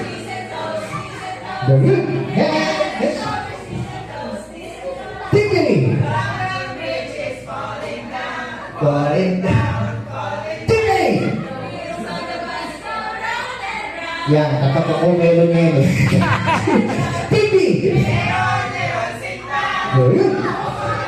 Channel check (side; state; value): both; identical; correlation 1.00